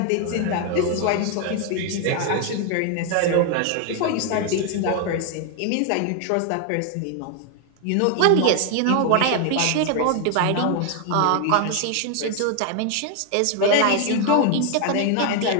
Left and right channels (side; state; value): both; different; correlation 0.00